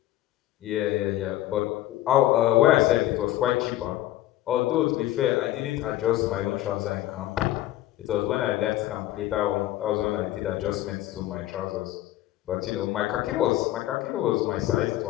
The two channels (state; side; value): quieter; right; 14.7 dB